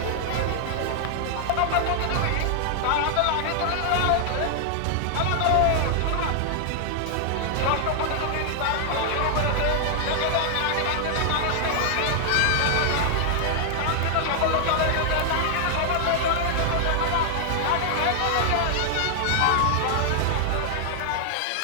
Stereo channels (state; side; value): different; both; correlation -0.01